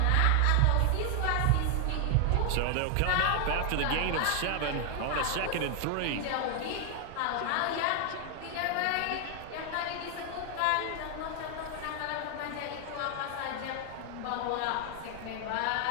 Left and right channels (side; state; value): both; different; correlation 0.00